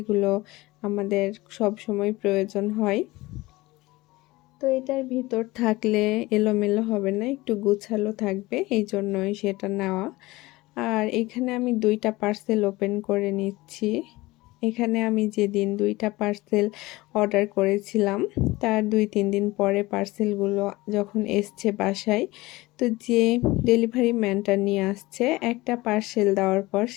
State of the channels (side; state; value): right; quieter; 20.2 dB